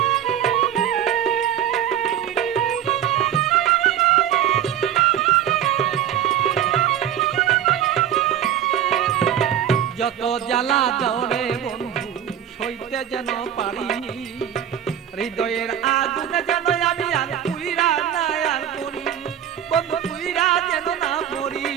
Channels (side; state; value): left; quieter; 10.2 dB